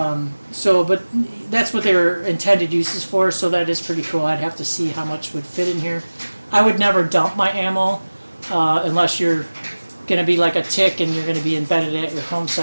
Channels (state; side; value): inverted; both; correlation -1.00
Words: that's what their intended uses for, so that is pretty cool. I'd have to see how much would fit in here. I would never dump my ammo unless you're going to be like a tick and you're going to be embedded at your home